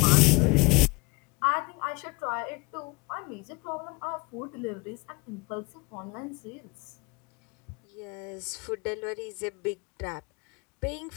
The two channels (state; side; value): quieter; right; 26.4 dB